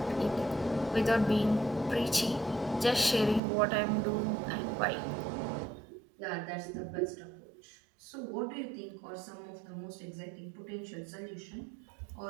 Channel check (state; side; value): drops out; left; at 3.4 s